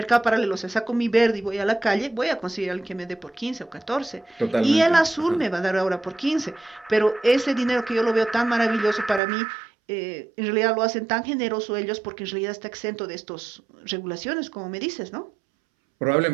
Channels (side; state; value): left; drops out; at 9.2 s